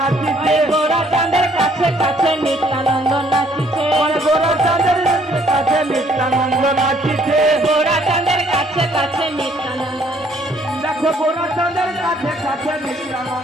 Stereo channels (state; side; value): normal; both; correlation 0.64